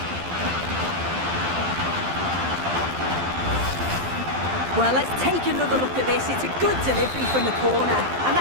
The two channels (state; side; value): late; left; 12 ms